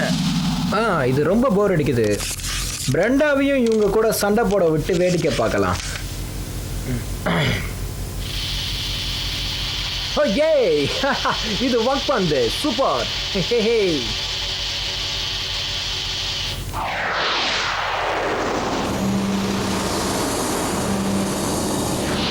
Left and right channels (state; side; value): identical; both; correlation 1.00